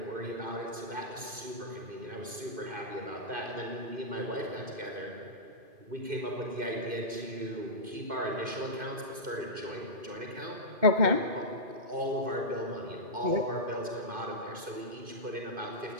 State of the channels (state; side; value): late; left; 2.5 ms